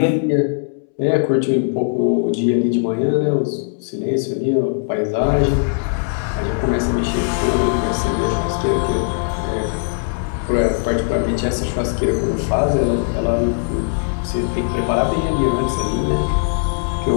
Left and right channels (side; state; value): right; silent; 66 dB below the other